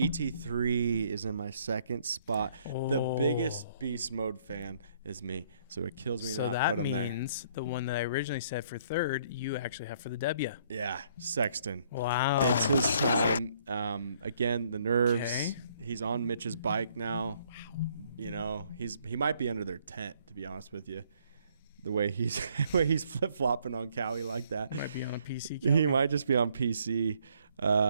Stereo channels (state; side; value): inverted; both; correlation -0.65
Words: is in my 2nd spot. The biggest beast mode fan is me, so it kills me to not put him there. So that means the one that I originally said for 3rd, you actually have for the W. Yeah, Sexton. Wow. It's his time. Again, the nerves. Okay. He's on Mitch's bike now. Wow. He might be under their tent, to be honest with you. The way he's flip-flopping on Cowie like that. He might be on PC. He might just be on PC.